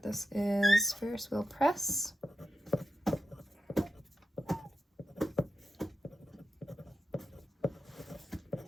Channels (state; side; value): normal; both; correlation 0.90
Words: this is Ferris Press.